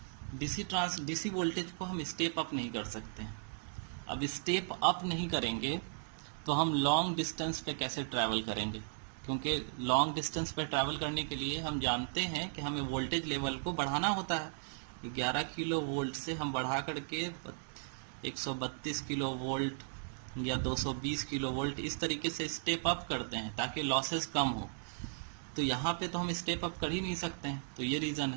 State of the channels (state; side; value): silent; left; digital silence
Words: DC voltage को हम स्टेप अप नहीं कर सकते हैं। अब स्टेप अप नहीं करेंगे तो हम लॉन्ग डिस्टेंस पे कैसे ट्रैवल करेंगे? क्योंकि लॉन्ग डिस्टेंस पे ट्रैवल करने के लिए हम जानते हैं कि हमें वोल्टेज लेवल को बढ़ाना होता है। 11 किलो वोल्ट से हम बढ़ा करके 132 किलो वोल्ट या 220 किलो वोल्ट, इस तरीके से स्टेप अप करते हैं ताकि लॉसेस कम हो। तो यहाँ पे तो हम स्टेप अप कर ही नहीं सकते हैं, तो ये रीज़न